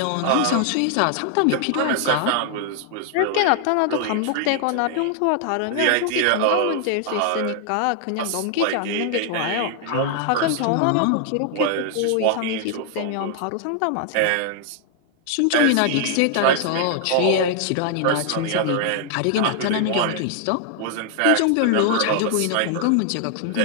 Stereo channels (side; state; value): both; different; correlation 0.00